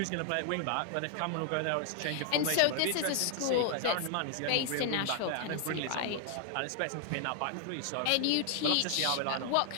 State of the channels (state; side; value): different; both; correlation 0.00